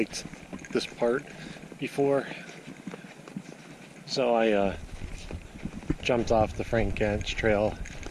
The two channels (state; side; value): identical; both; correlation 1.00